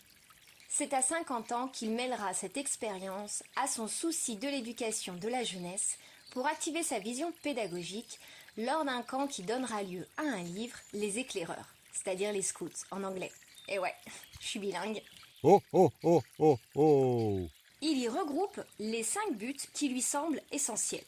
C'est à 50 ans qu'il mêlera cette expérience à son souci de l'éducation de la jeunesse pour activer sa vision pédagogique lors d'un camp qui donnera lieu à un livre, Les Éclaireurs, c'est-à-dire les scouts en anglais. Et ouais, je suis bilingue. Oh oh oh oh oh. Il y regroupe les 5 buts qui lui semblent essentiels.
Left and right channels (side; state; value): both; identical; correlation 1.00